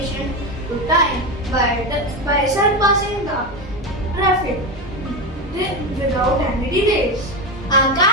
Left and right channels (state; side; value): normal; both; correlation 0.16